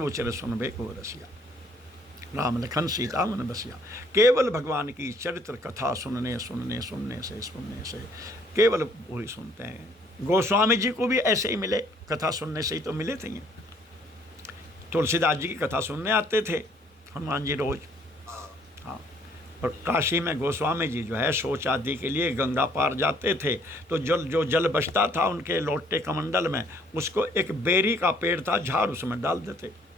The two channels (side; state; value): both; normal; correlation 0.62